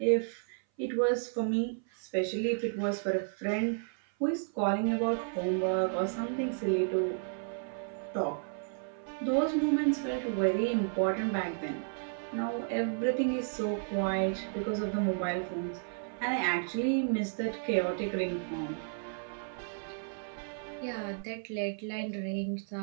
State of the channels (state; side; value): silent; left; 56 dB below the other